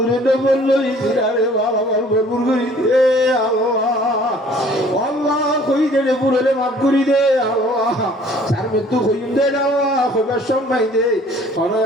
নবর লই সিরারে ভালো ভালো ভরপুর করি দে আল্লাহ আল্লাহ কই দে পুরলে মাফ করি দে আল্লাহ সার মৃত্যু হইম দে আল্লাহ খবর সম্মাই দে আরে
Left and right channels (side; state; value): both; normal; correlation 0.54